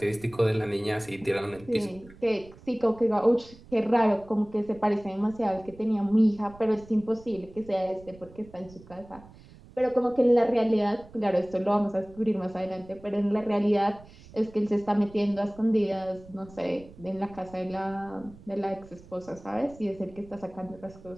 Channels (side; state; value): right; noise; rumble, 21 dB below the sound